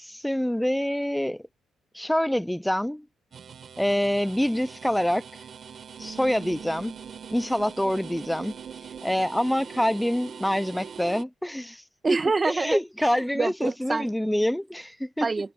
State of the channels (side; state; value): both; normal; correlation 0.98